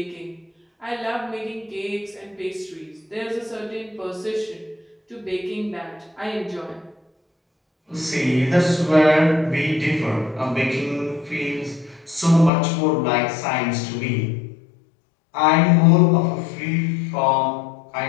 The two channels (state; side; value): drops out; right; at 12.5 s